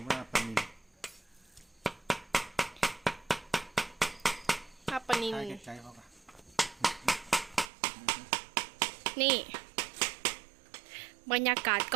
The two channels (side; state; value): left; drops out; at 7.7 s